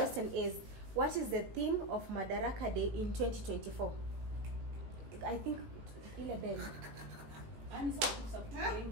is, what is the theme of Madaraka Day in 2024? I think ile bell.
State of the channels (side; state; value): left; late; 18 ms